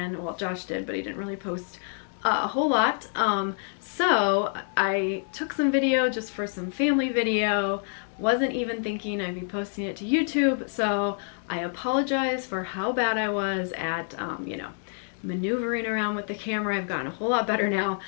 Well, Josh did, but he didn't really post a whole lot. So I took some video just for some family video. Wasn't even thinking I'd be posting it to YouTube, so I apologize for how bad I was at, you know, maneuvering around with the camera. I've gotten a whole lot better now.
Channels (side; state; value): right; silent; 60 dB below the other